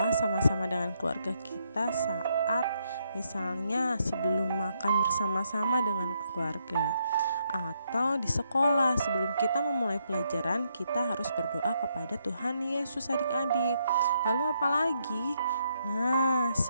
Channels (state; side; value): inverted; both; correlation -0.76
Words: sama-sama dengan keluarga kita saat misalnya sebelum makan bersama-sama dengan keluarga. Atau di sekolah sebelum kita memulai pelajaran kita harus berdoa kepada Tuhan Yesus adik-adik. Lalu apalagi? Nah,